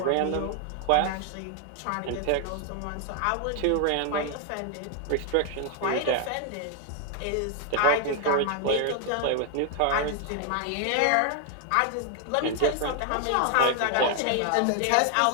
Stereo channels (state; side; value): different; both; correlation 0.00